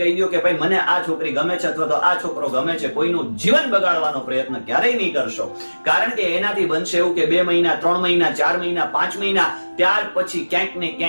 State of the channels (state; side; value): inverted; both; correlation -1.00